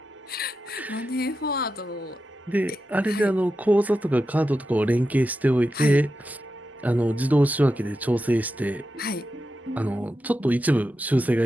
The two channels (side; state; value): both; normal; correlation 0.89